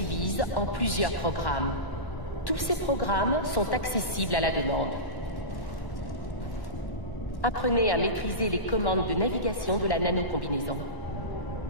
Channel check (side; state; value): right; late; 1.1 ms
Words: en plusieurs programmes. Tous ces programmes sont accessibles à la demande. Apprenez à maîtriser les commandes de navigation de la nanocombinaison.